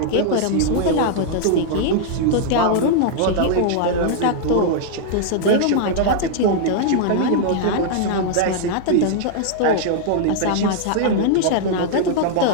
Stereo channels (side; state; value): both; different; correlation -0.01